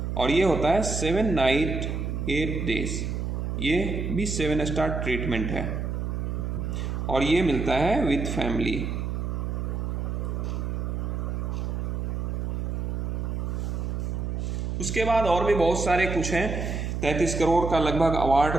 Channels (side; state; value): right; noise; hum, 2 dB below the sound